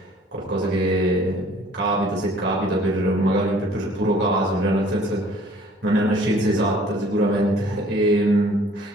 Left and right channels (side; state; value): both; normal; correlation 0.55